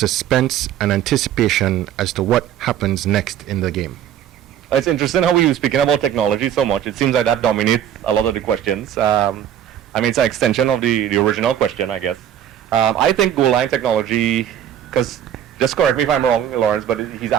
and anticipation as to what happens next in the game? It's interesting how we were speaking about technology so much. It seems like that dominates a lot of the questions. It's an extension of the original question, I guess. I think goal line technology, because, just correct me if I'm wrong, Lawrence, but he's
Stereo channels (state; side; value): quieter; left; 10.4 dB